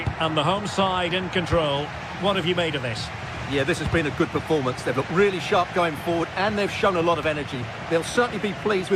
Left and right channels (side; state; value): both; identical; correlation 1.00